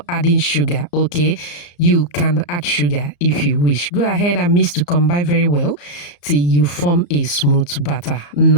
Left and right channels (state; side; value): late; right; 34 ms